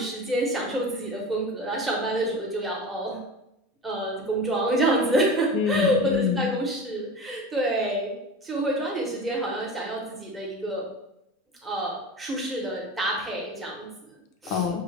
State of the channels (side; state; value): both; normal; correlation 0.31